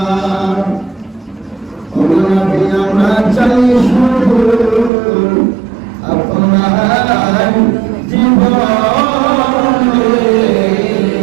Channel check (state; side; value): drops out; left; at 4.9 s